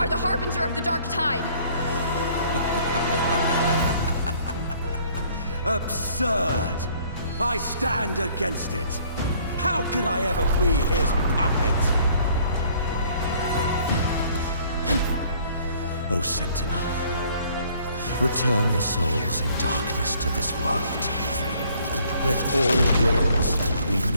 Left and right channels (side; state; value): both; inverted; correlation -0.59